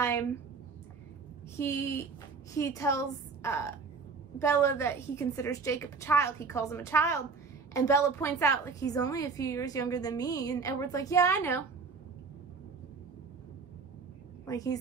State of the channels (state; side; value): quieter; left; 4.8 dB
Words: he tells Bella that he considers Jacob a child. He calls him a child. And Bella points out, like, he's only a few years younger than me. And Edward's like, yeah, I know. Like, he's